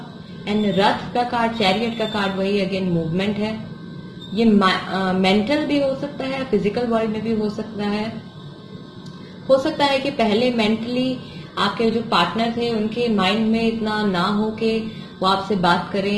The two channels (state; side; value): identical; both; correlation 1.00